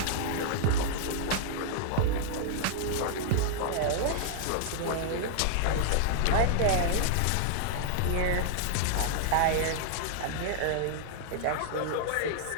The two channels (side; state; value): both; different; correlation -0.01